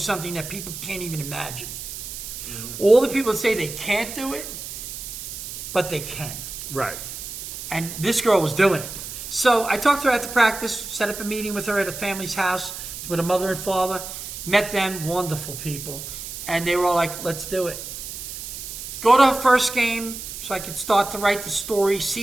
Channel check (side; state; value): right; noise; hiss, 9 dB below the sound